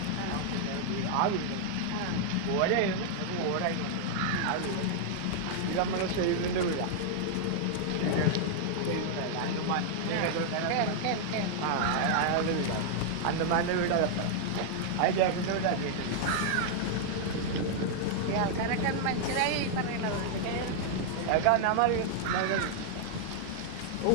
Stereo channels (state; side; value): different; both; correlation -0.01